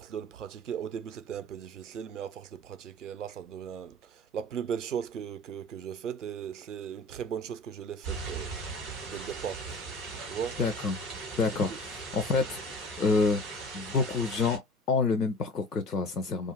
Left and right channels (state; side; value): normal; both; correlation 0.41